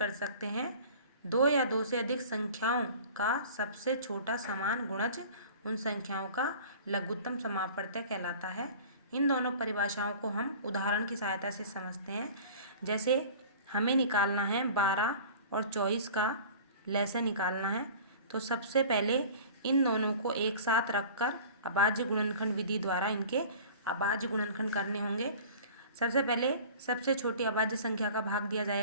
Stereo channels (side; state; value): both; inverted; correlation -0.43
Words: सकते हैं, दो या दो से अधिक संख्याओं का सबसे छोटा समान गुणज उन संख्याओं का लघुत्तम समापवर्त्य कहलाता है। इन दोनों परिभाषाओं को हम उदाहरण की सहायता से समझते हैं। जैसे हमें निकालना है 12 और 24 का लसय निकालना है, तो सबसे पहले इन दोनों को एक साथ रखकर अभाज्य गुणनखंड विधि द्वारा इनके अभाज्य गुणनखंड करने होंगे। सबसे पहले सबसे छोटी अभाज्य संख्या का भाग दिया